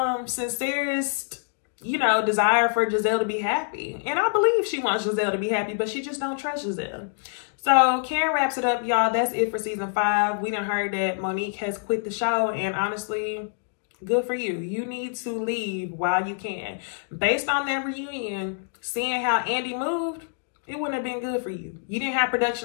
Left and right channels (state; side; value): silent; right; digital silence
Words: sincerest, you know, desire for Giselle to be happy. And I believe she wants Giselle to be happy, but she just don't trust Giselle. So Karen wraps it up, y'all. That's it for season 5. We done heard that Monique has quit the show, and honestly, good for you. You need to leave while you can. Based on that reunion, seeing how Andy moved, it wouldn't have been good for you. You didn't have